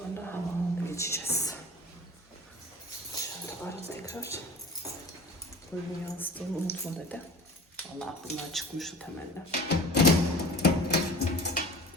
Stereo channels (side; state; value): both; normal; correlation 0.40